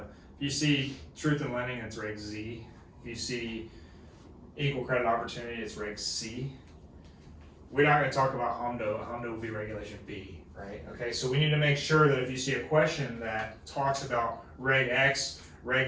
If you see Truth in Lending, it's Reg Z. If you see Equal Credit Opportunity, it's Reg C. We're not going to talk about HMDA. HMDA will be Regulation B, right? Okay, so we need to make sure that if you see a question that talks about Reg X,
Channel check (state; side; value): identical; both; correlation 1.00